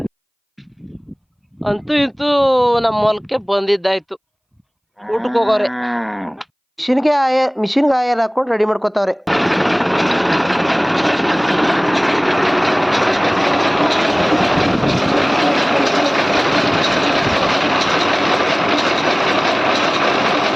ಅಂತೂ ಇಂತೂ ನಮ್ಮ ಹೊಲಕ್ಕೆ ಬಂದಿದ್ದಾಯ್ತು. ಊಟಕ್ಕೆ ಹೋಗೋರೆ ಮಿಷಿನ್ಗೆ ಆಯಲ್ ಹಾಕೊಂಡು ರೆಡಿ ಮಾಡ್ಕೋತಾವ್ರೆ.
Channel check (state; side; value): identical; both; correlation 1.00